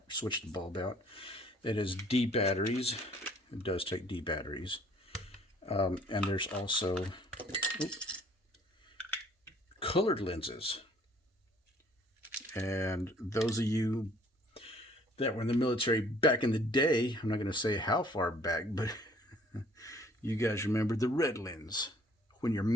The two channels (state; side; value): normal; both; correlation 0.58